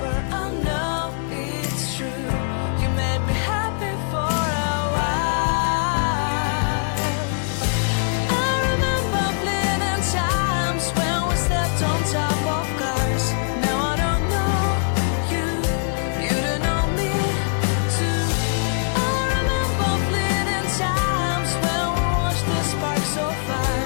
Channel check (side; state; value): right; silent; digital silence